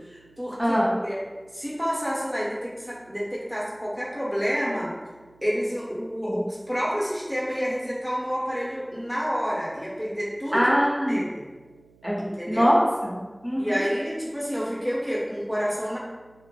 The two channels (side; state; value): right; noise; hum, 29 dB below the sound